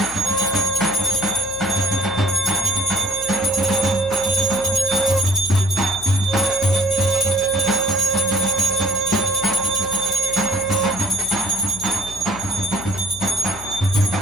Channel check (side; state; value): left; noise; hum, 16 dB below the sound